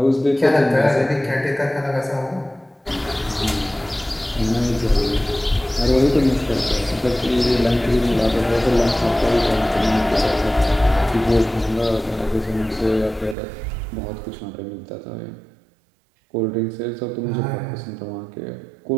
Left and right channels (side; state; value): left; drops out; at 13.4 s